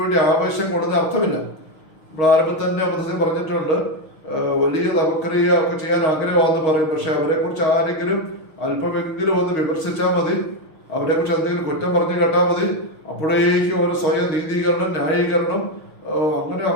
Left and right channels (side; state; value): right; late; 6.4 ms